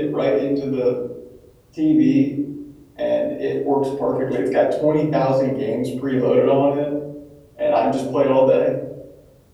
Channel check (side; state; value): both; identical; correlation 1.00